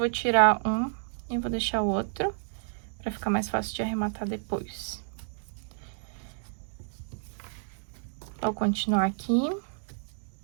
tirar um e vou deixar o outro, pra ficar mais fácil de arrematar depois. Vou continuar aqui.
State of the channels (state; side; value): silent; left; digital silence